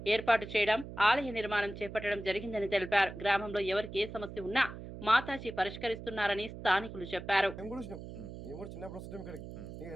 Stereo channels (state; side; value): noise; right; hum, 11 dB below the sound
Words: ఏర్పాటు చేయడం, ఆలయ నిర్మాణం చేపట్టడం జరిగిందని తెలిపారు. గ్రామంలో ఎవరికి ఏ సమస్య ఉన్నా మాతాజీ పరిష్కరిస్తున్నారని స్థానికులు చెప్పారు.